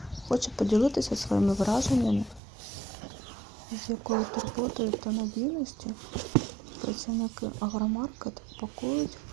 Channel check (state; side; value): drops out; left; at 2.4 s